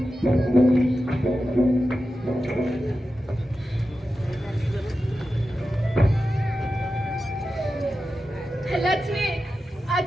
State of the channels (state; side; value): normal; both; correlation 0.92